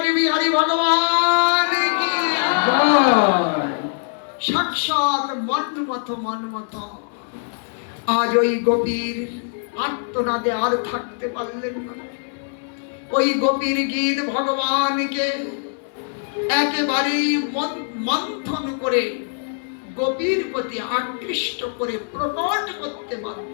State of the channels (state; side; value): silent; right; 60 dB below the other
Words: বিহারী ভগবান কি জয়। সাক্ষাৎ মন্মথ মন্মথ। আজ ওই গোপীর আত্মনাদে আর থাকতে পারলেন না। ওই গোপীর গীত ভগবানকে একেবারেই মন্থন করে গোপীর প্রতি আকৃষ্ট করে প্রকট করতে